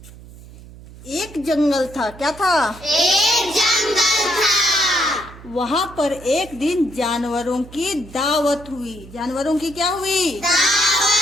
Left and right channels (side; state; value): right; noise; hum, 18 dB below the sound